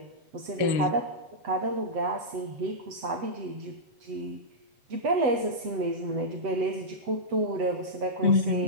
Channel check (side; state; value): left; late; 7.9 ms